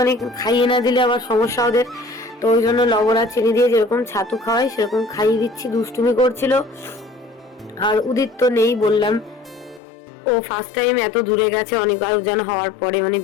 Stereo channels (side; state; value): right; drops out; at 9.8 s